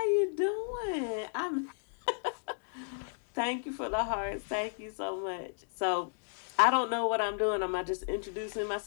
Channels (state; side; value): silent; right; digital silence